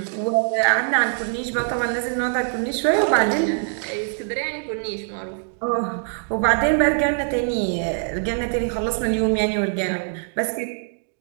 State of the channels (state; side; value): silent; left; 63 dB below the other